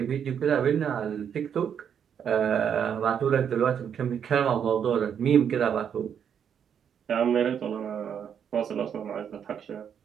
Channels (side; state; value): left; quieter; 8.1 dB